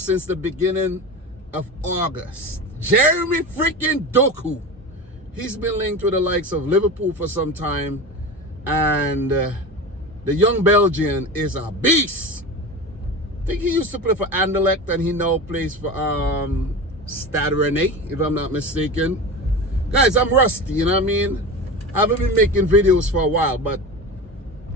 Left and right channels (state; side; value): normal; both; correlation 0.28